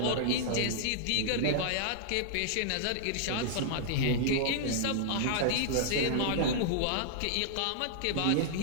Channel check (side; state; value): both; different; correlation -0.01